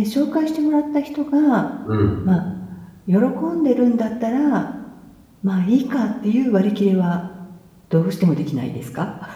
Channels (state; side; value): identical; both; correlation 1.00